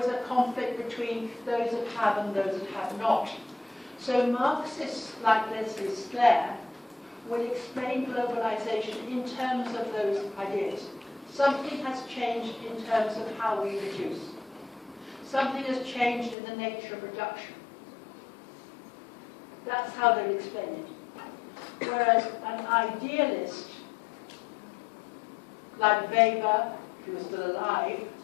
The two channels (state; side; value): drops out; right; at 16.4 s